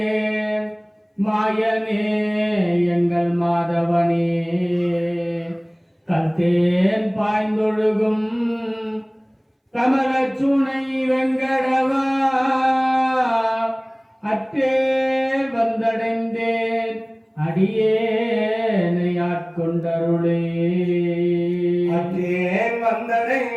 மாயனே எங்கள் மாதவனே. கல்தேன் பாய்ந்தொழுகும் கமலச்சுனை வெங்கடவா, அற்றேல் வந்தடைந்தேன் அடியேனை ஆட்கொண்டருளே. அற்றேன்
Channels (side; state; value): both; identical; correlation 1.00